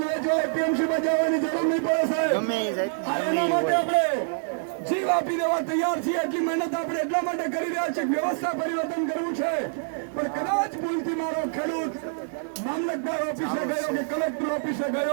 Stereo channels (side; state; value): left; silent; digital silence